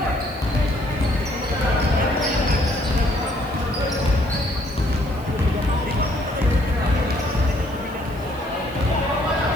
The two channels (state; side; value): noise; right; hiss, 23 dB below the sound